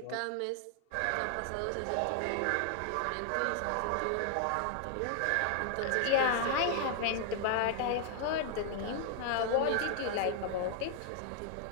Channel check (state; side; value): different; both; correlation 0.00